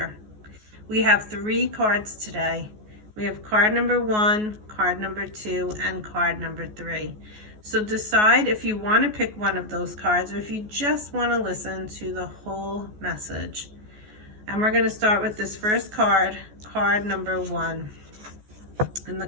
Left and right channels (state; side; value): late; left; 14 ms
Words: We have 3 cards today. We have card number 1, card number 2, and card number 3. So decide if you want to pick one of those cards or if you just want to listen to the whole message. And we're going to start with this first card, card number 1. And the